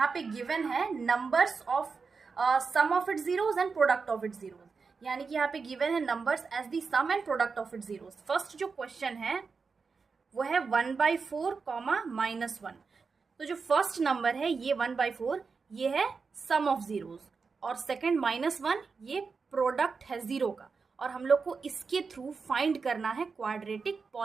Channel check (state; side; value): quieter; left; 4.9 dB